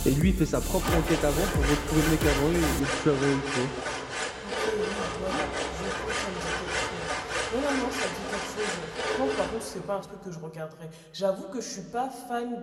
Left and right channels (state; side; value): identical; both; correlation 1.00